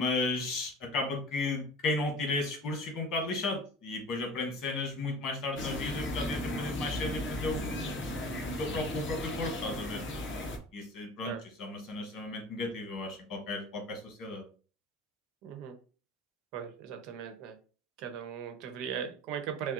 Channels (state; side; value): normal; both; correlation 0.40